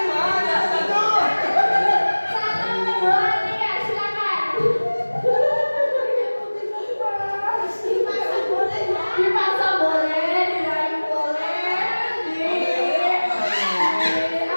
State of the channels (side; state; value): both; inverted; correlation -1.00